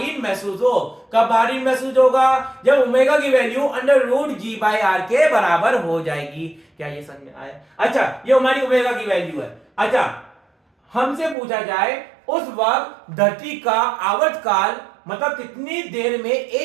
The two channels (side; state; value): left; drops out; at 11.4 s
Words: महसूस हो। कब भारी महसूस होगा? जब ओमेगा की value under root G by R के बराबर हो जाएगी। क्या ये समझ में आया? अच्छा, ये हमारी ओमेगा की वैल्यू है। अच्छा, हमसे पूछा जाए उस वक्त धरती का आवर्तकाल, मतलब कितनी देर में